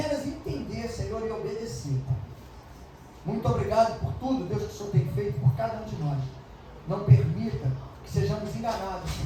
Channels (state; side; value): identical; both; correlation 1.00